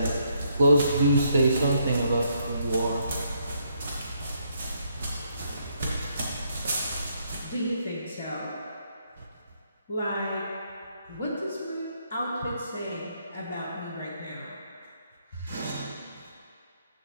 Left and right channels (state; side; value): inverted; both; correlation -0.73